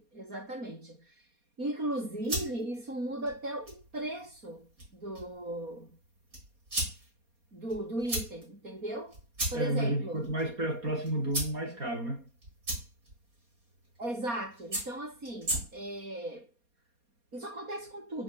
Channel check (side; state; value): left; late; 4.2 ms